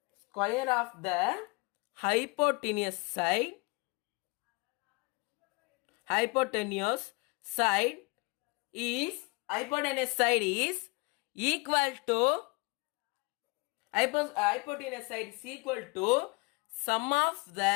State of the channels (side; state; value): right; quieter; 27.9 dB